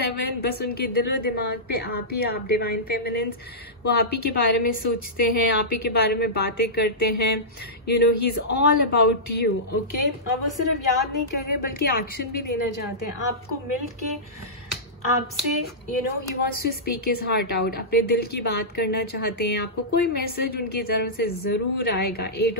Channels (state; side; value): normal; both; correlation -0.15